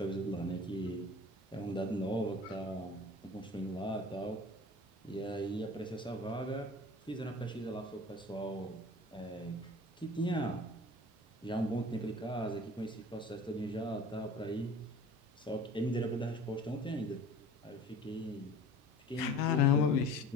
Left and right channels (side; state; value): both; normal; correlation 0.42